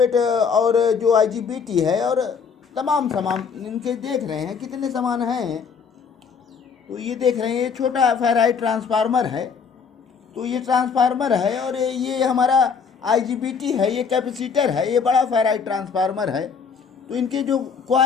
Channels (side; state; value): right; quieter; 5.9 dB